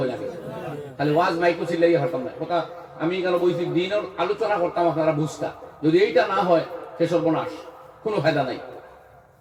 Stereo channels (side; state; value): both; identical; correlation 1.00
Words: লাগে, খালি ওয়াজ মাইকো চিল্লাই হতাম না কথা। আমি কেন বলছি দিনের আলোচনা করতাম, আপনারা বুঝতা। যদি এইটা না হয় সে সর্বনাশ, কোনো ফায়দা নাই।